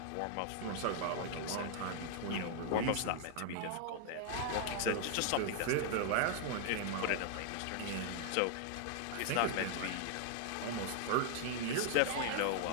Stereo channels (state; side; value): different; both; correlation 0.00